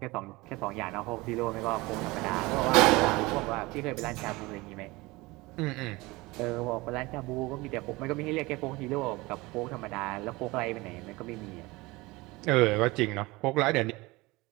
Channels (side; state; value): left; quieter; 22.0 dB